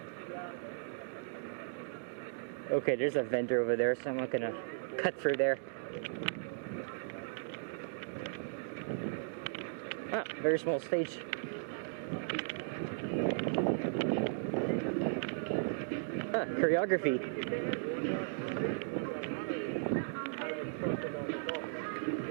Okay, there's a vendor over there, so I'm not gonna cut through there. Ah, very small stage. Ah, choreography.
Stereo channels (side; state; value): left; silent; digital silence